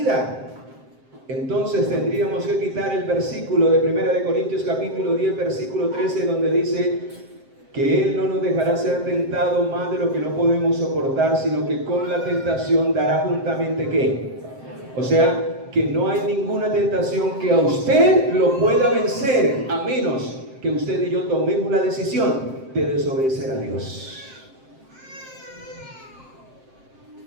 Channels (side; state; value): left; late; 7.6 ms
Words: Entonces tendríamos que quitar el versículo de 1 Corintios capítulo 10 versículo 13, donde dice que Él no nos dejará ser tentado más de lo que no podemos soportar, sino que con la tentación dará juntamente ¿qué? O sea, que no hay ninguna tentación que a usted lo pueda vencer, a menos que usted y yo tomemos la decisión de desobedecer a Dios.